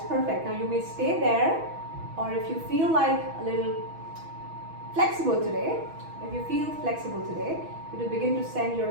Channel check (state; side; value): late; left; 6.2 ms